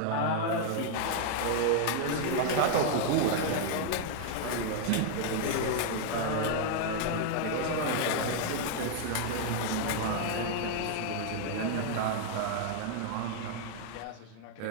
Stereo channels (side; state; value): both; different; correlation 0.00